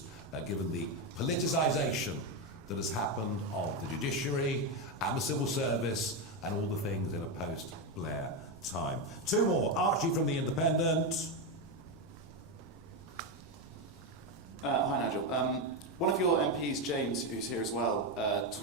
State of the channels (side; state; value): both; normal; correlation 0.09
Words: given the politicisation that has happened of the judiciary and the civil service and all the things in a post-Blair time. Two more. Archie from The Independent. Hi Nigel. One of your MPs, James, who's here as well,